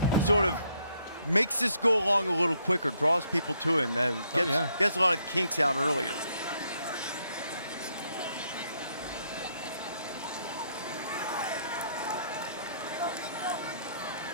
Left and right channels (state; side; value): inverted; both; correlation -0.72